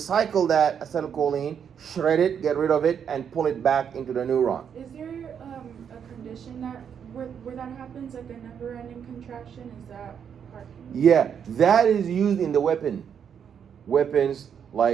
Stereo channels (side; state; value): left; quieter; 7.8 dB